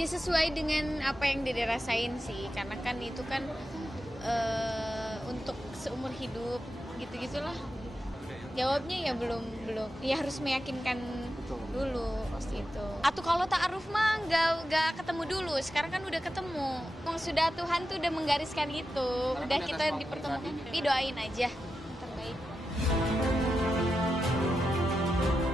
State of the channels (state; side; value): normal; both; correlation 0.90